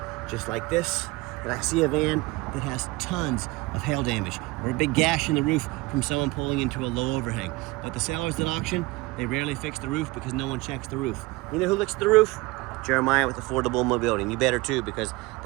just like this, and I see a van that has tons of hail damage or a big gash in the roof from someone pulling into a low overhang. But the sellers at auction, they rarely fix the roof because no one checks the roof. You know who looks at the roof? Jeremiah with Affordable Mobility, and you better too, because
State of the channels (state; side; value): quieter; left; 22.1 dB